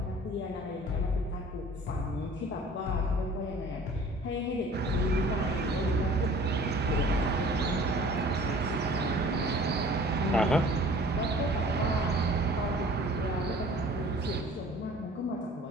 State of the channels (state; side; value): normal; both; correlation 0.48